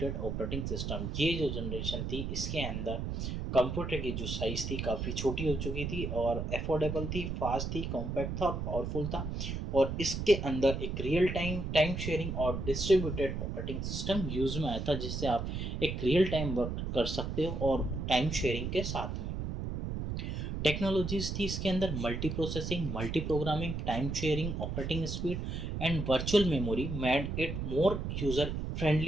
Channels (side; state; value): right; noise; rumble, 3 dB below the sound